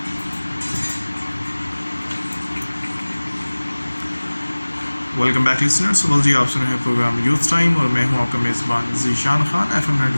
Welcome back listeners. सुबह जी, आप सुन रहे हैं प्रोग्राम यूथ टाइम और मैं हूं आपका मेज़बान ज़ीशान खान FM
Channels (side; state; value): both; inverted; correlation -1.00